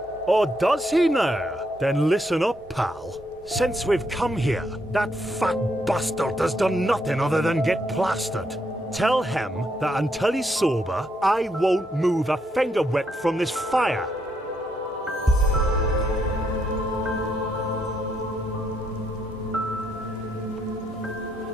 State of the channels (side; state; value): both; normal; correlation 0.77